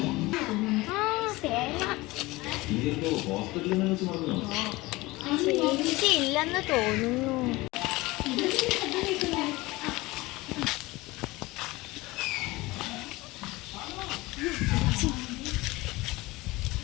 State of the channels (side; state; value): right; quieter; 20.9 dB